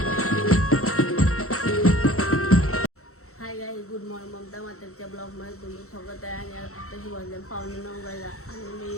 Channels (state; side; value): late; right; 0.64 ms